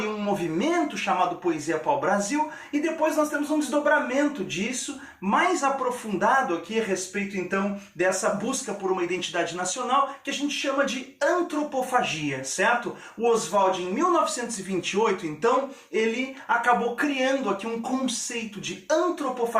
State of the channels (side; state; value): both; identical; correlation 1.00